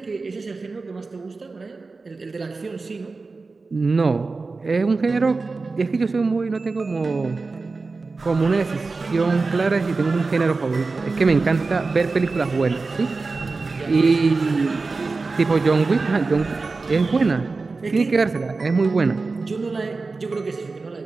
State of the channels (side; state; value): left; quieter; 3.9 dB